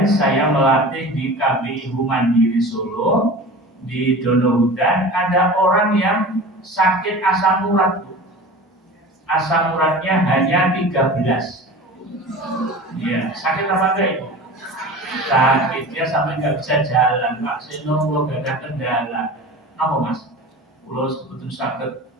saya melatih di KBIU Mandiri Solo, di Donohudan, ada orang yang sakit asam urat. Asam uratnya hanya 13. Iya, sakit apa enggak itu? Sakit, dia sampai nggak bisa jalan. Pak Seno, kalau gak ada kendala. Apa mas? Kalau sebetulnya sakit,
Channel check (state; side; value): normal; both; correlation 0.36